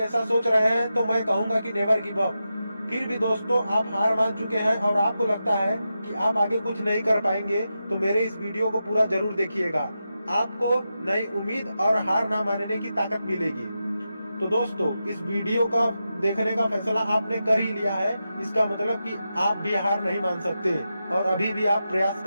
सोच रहे हैं तो मैं कहूंगा कि नेवर गिव अप। फिर भी दोस्तों आप हार मान चुके हैं और आपको लगता है कि आप आगे कुछ नहीं कर पाएंगे तो मेरे इस वीडियो को पूरा जरूर देखिएगा। आपको नई उम्मीद और हार ना मानने की ताकत मिलेगी। तो दोस्तों इस वीडियो का देखने का फैसला आपने कर ही लिया है, इसका मतलब कि आप भी हार नहीं मान सकते और अभी भी आप प्रयास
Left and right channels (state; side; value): inverted; both; correlation -0.89